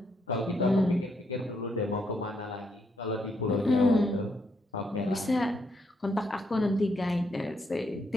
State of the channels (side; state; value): both; normal; correlation 0.76